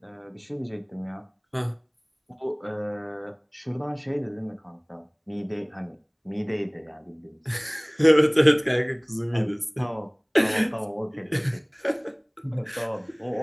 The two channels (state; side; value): identical; both; correlation 1.00